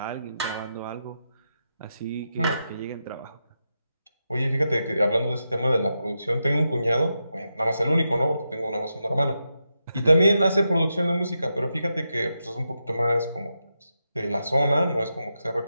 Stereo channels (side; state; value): both; inverted; correlation -0.87